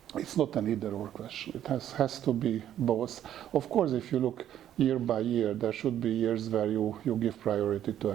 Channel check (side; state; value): left; quieter; 11.1 dB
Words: it's not an either-or question. It has to be both. Of course, if you look year by year, there should be years where you give priority to